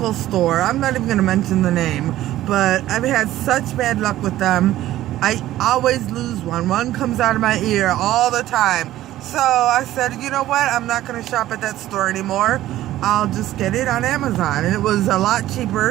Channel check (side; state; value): left; quieter; 14.4 dB